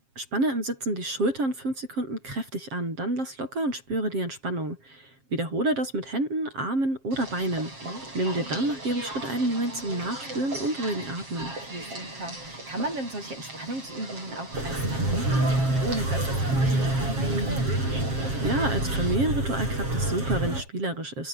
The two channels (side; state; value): left; late; 7.5 ms